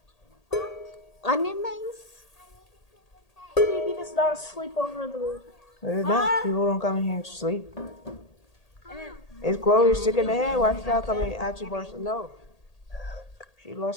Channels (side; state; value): right; late; 1.8 ms